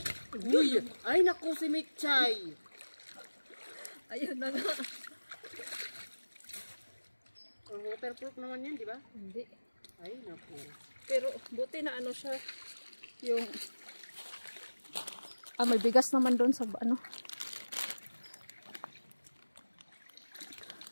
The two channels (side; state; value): both; inverted; correlation -1.00